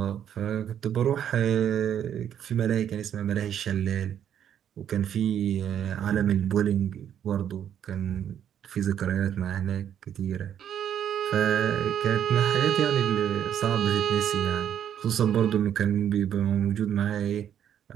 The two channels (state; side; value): quieter; left; 9.6 dB